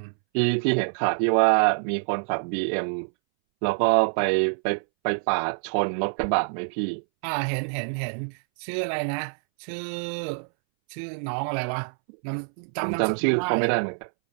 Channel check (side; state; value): left; silent; 61 dB below the other